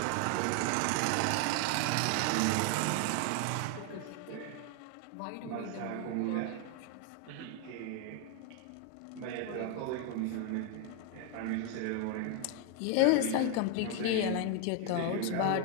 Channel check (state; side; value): different; both; correlation 0.01